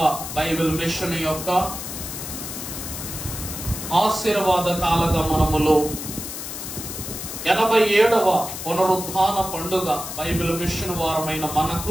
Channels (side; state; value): left; noise; hiss, 8 dB below the sound